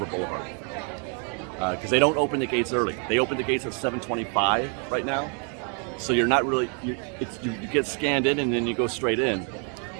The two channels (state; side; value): quieter; left; 39.1 dB